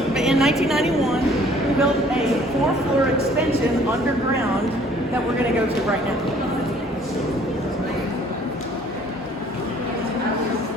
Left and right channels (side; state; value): both; normal; correlation 0.57